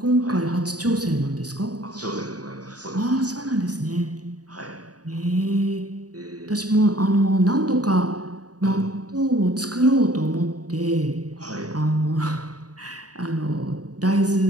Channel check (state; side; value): late; left; 0.68 ms